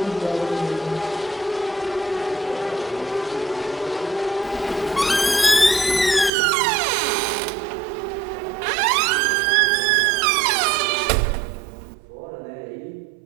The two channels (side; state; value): left; drops out; at 6.3 s